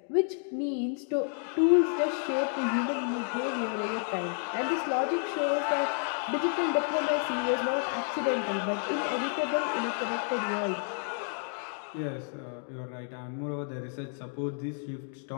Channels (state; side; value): silent; right; 57 dB below the other